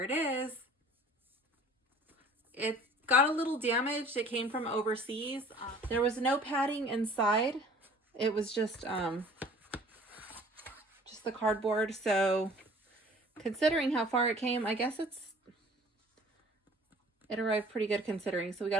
it is. It got a little damaged. It came from overseas. There was no padding inside. It was just the cardboard. So considering how far it came, I guess it arrived pretty good considering. So we got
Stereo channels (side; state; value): both; normal; correlation 0.49